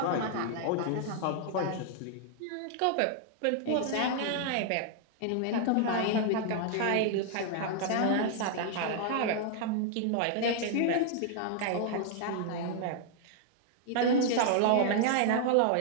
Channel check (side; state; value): both; different; correlation 0.00